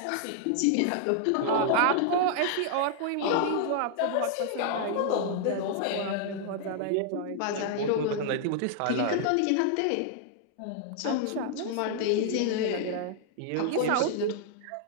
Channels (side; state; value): both; different; correlation 0.00